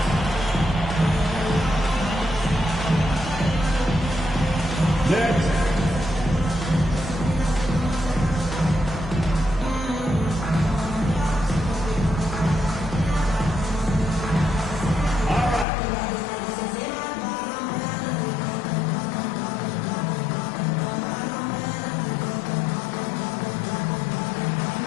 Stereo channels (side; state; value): right; drops out; at 15.7 s